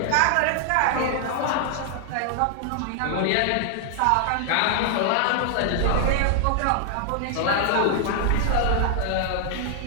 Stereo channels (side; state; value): both; different; correlation 0.00